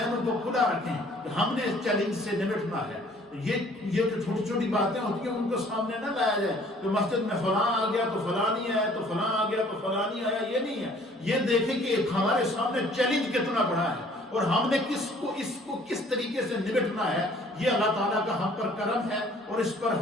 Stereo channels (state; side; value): normal; both; correlation 0.56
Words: کو کھلا رکھیں کہ ہم نے اس چیلنج سے نمٹنا ہے. یہ جو چھوٹی چھوٹی باتیں ہوتی ہیں ان کو سامنے نہ لایا جائے کہ مسجد میں فلاں آ گیا تو فلاں نہیں آیا, تو فلاں آ گیا تو فلاں نہیں آیا. یہ نہیں ہے. یہ دیکھیں کہ ہمارے سامنے چیلنج کتنا بڑا ہے اور ہم نے اس کو کس طریقے سے نمٹنا ہے. یہ اللہ تعالیٰ کا ہم پر کرم ہے اور اس پر